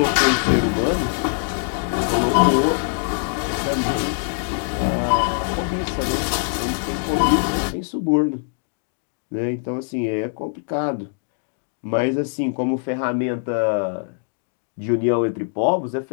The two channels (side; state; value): right; silent; digital silence